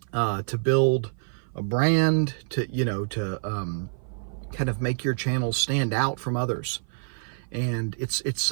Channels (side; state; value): left; silent; 55 dB below the other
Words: to build a brand, to kind of make your channel stand out from others, and it's